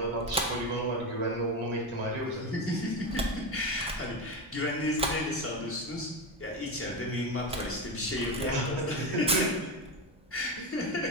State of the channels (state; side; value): normal; both; correlation 0.17